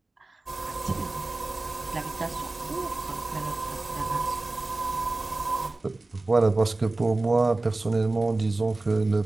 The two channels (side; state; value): left; quieter; 3.1 dB